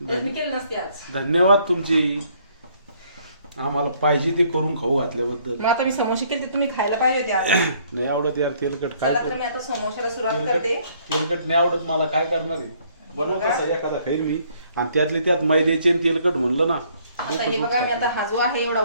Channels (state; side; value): inverted; both; correlation -0.64